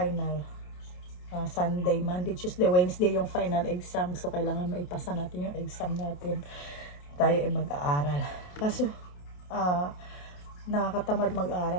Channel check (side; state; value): right; late; 28 ms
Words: Sunday, Monday, Tuesday, Wednesday yung final exam. So, kailangan maipasa natin yung exam natin. Tayo ay mag-aaral. Kaso, nakakatamad